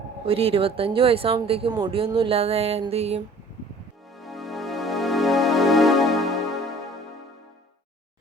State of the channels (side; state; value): both; normal; correlation 0.50